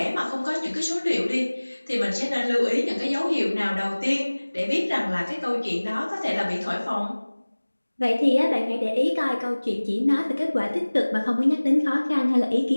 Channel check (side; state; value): both; inverted; correlation -1.00